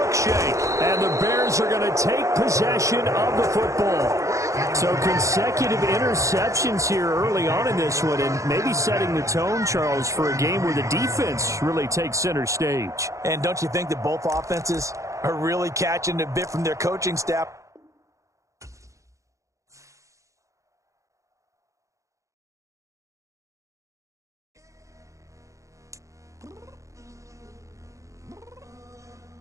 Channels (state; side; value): late; left; 0.15 ms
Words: And the Bears are going to take possession of the football. So consecutive interceptions here early on in this one, and maybe setting the tone, Charles, for a game where the defense really takes center stage. And don't you think that both offenses are really catching a bit from their coaching staff?